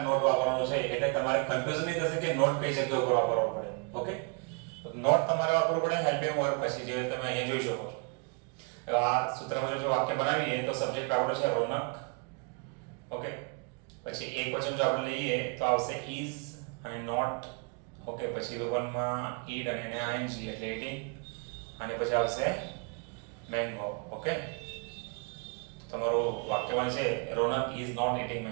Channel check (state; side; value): quieter; left; 34.6 dB